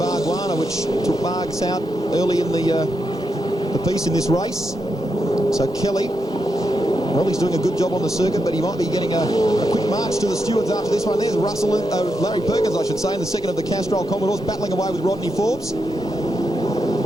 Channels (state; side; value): normal; both; correlation 0.84